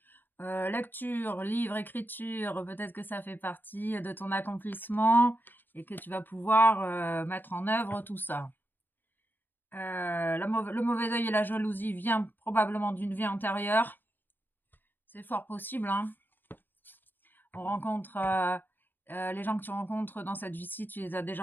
Lecture, livre, écriture, peut-être que ça fait partie de ton accomplissement et que tu vas pouvoir mettre en œuvre tout ça. Le mauvais œil et la jalousie vient probablement d'une vie antérieure. C'est fort possible, hein. On rencontre les gens que tu rencontres dans cette vie-ci, tu les as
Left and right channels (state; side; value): late; right; 0.092 ms